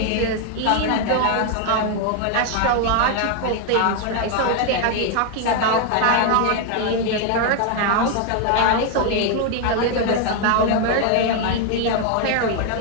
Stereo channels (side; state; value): both; different; correlation 0.01